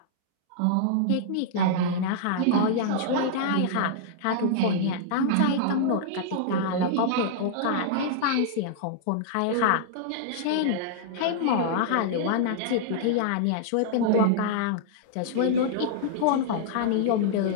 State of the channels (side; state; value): both; different; correlation -0.01